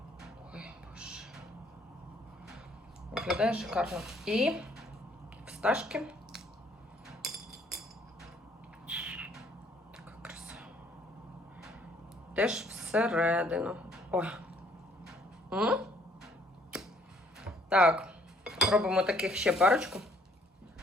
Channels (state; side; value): normal; both; correlation 0.63